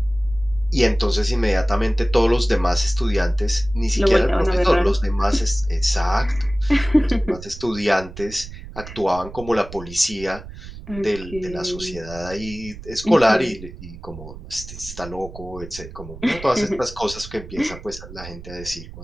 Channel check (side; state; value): right; noise; rumble, 14 dB below the sound